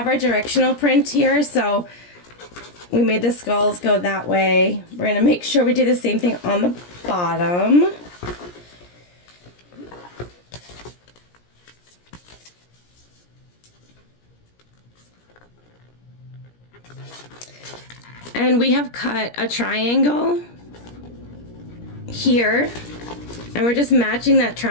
our directional print here, so we made the skulls go that way. We're going to make sure we do the same thing on the bottom. And we have cut a triangle here, and we're just matching that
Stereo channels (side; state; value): right; late; 17 ms